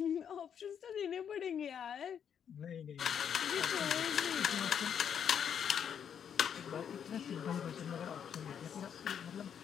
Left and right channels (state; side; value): quieter; right; 8.2 dB